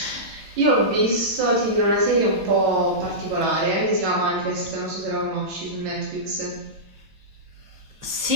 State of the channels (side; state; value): left; late; 9.1 ms